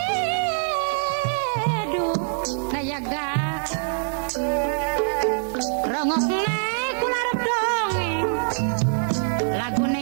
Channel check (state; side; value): silent; left; digital silence